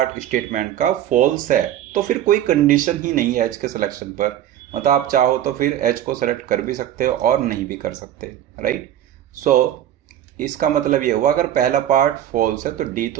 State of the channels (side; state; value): left; quieter; 11.5 dB